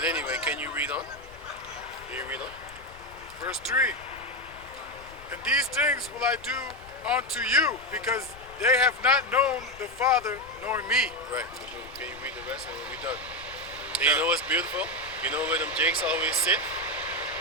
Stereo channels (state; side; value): noise; left; rumble, 20 dB below the sound